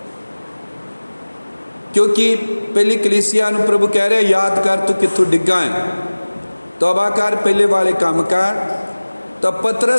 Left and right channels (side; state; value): both; inverted; correlation -1.00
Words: क्योंकि पहली कलीसिया नूं प्रभु कह रहे याद कर तू कित्थों डिग्गा है, तौबा कर पहले वाले काम कर। तो